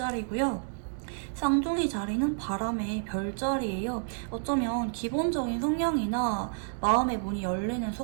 쌍둥이 자리는 바람의 별자리예요. 어쩌면 기본적인 성향이나 마음의 문이 열리는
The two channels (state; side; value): silent; left; digital silence